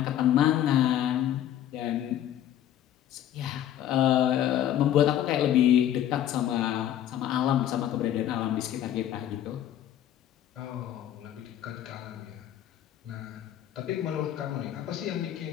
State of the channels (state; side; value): quieter; right; 11.3 dB